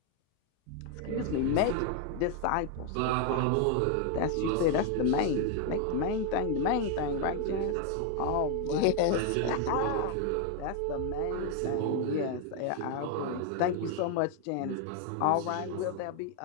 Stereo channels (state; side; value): different; both; correlation 0.00